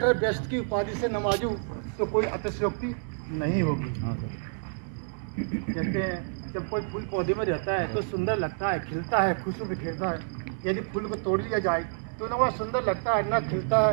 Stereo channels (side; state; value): left; silent; 59 dB below the other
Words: बेस्ट की उपाधि से नवाजूं तो कोई अतिशयोक्ति नहीं होगी। कहते हैं जब कोई फूल पौधे में रहता है तो सुंदर लगता है, खिलता है, खुशबू बिखेरता है। यदि फूल को तोड़ लिया जाए तो ना वह सुंदर लगता है, ना खिलता है,